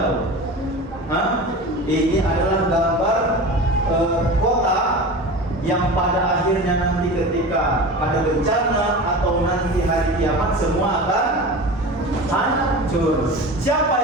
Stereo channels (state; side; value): normal; both; correlation 0.32